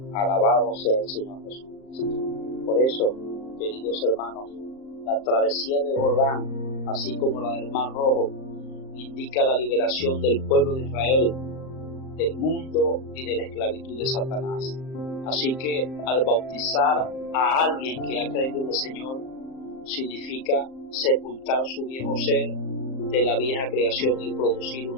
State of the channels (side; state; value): right; late; 38 ms